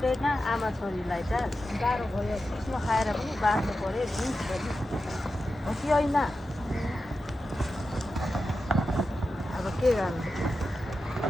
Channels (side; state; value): both; normal; correlation 0.91